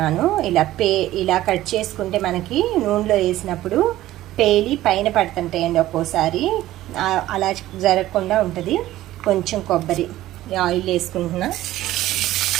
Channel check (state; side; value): quieter; left; 15.0 dB